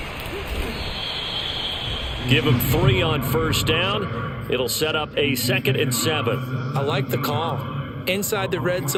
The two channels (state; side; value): identical; both; correlation 1.00